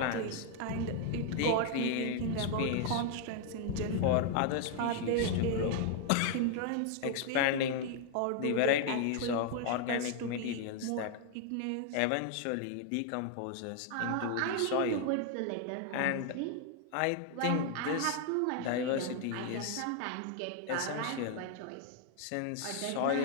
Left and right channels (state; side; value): different; both; correlation 0.00